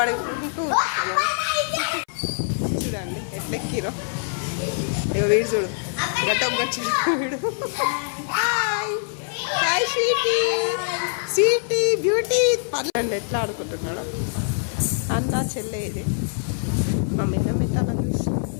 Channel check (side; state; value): right; silent; 58 dB below the other